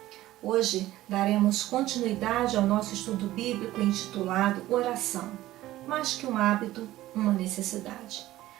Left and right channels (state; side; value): quieter; left; 15.6 dB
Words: Hoje daremos continuidade ao nosso estudo bíblico intitulado Oração, mais que um hábito, uma necessidade.